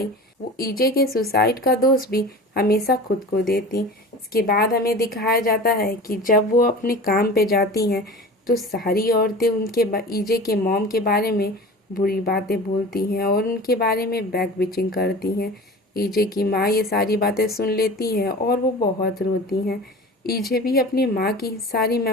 वो ईजे के सुसाइड का दोष भी हमेशा खुद को देती। इसके बाद हमें दिखाया जाता है कि जब वो अपने काम पे जाती हैं तो सारी औरतें उनके ईजे के मॉम के बारे में बुरी बातें बोलती हैं और उनके बारे में बैक बिचिंग करती हैं। ईजे की माँ ये सारी बातें सुन लेती हैं और वो बहुत रोती हैं। ईजे भी अपनी माँ की सारी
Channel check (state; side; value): normal; both; correlation 0.36